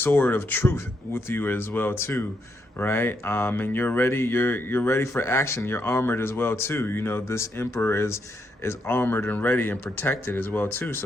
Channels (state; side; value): normal; both; correlation 0.78